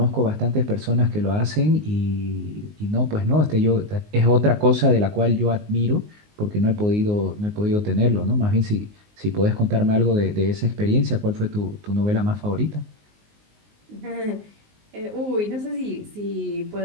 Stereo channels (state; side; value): late; left; 19 ms